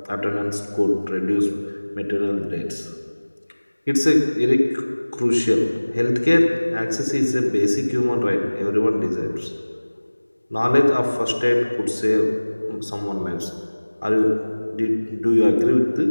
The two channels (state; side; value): inverted; both; correlation -1.00